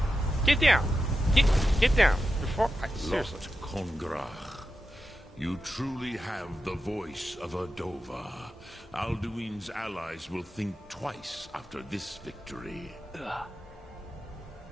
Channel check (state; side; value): normal; both; correlation 0.90